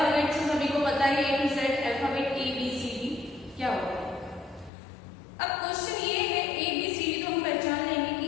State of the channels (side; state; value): right; drops out; at 4.7 s